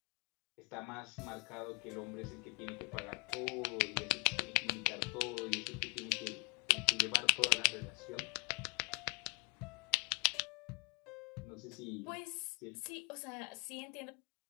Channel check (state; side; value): quieter; right; 34.2 dB